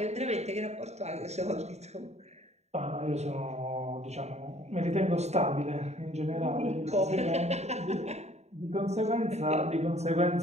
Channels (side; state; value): left; late; 0.32 ms